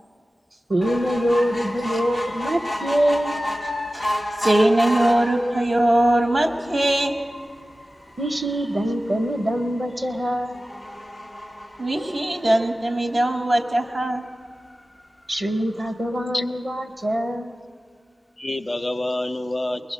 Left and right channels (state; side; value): normal; both; correlation 0.95